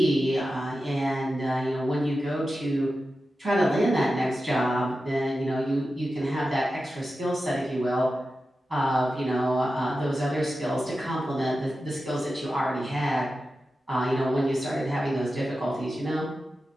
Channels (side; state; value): both; normal; correlation 0.92